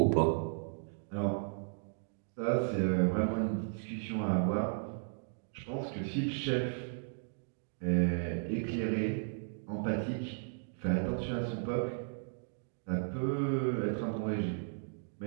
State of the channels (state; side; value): silent; left; digital silence